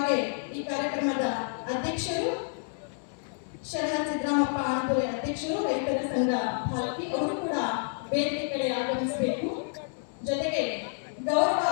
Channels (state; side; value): silent; right; digital silence